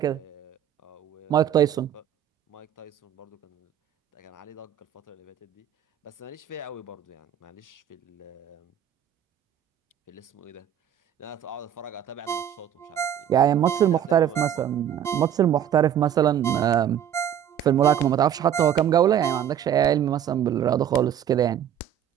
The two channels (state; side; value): quieter; left; 9.7 dB